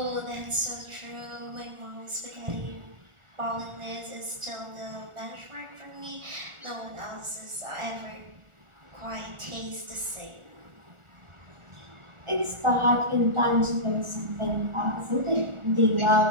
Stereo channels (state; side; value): late; left; 1.4 ms